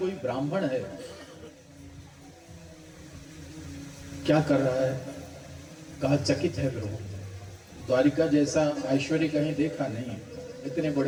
ब्राह्मण है। क्या कर रहा है? कहा चकित है प्रभु, द्वारिका जैसा ऐश्वर्य कहीं देखा नहीं। इतने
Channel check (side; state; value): both; identical; correlation 1.00